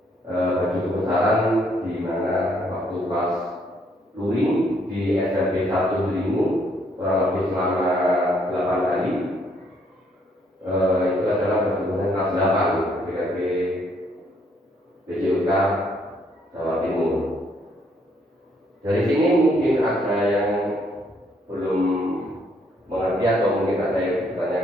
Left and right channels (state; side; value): normal; both; correlation 0.69